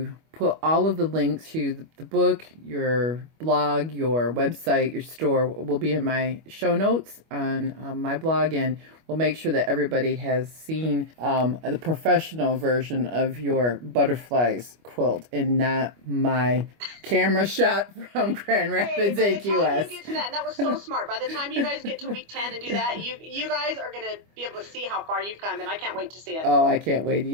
put all of the links to the book, your blog, your website, your store will be in my show notes on my blog, and we'll make sure that everybody has seen the professional version of your butterflies quilt and not my camera shot from Grand Rapids, AQS. AQS. You get to that, and that was so smart. By the time you guys get to week 10 and do that, you guys are going to be able to see how far you've come, and I can't wait to see it. Oh, I can't wait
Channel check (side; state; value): left; late; 25 ms